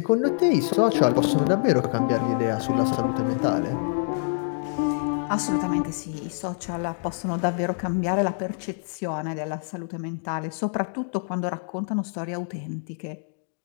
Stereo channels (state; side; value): silent; right; digital silence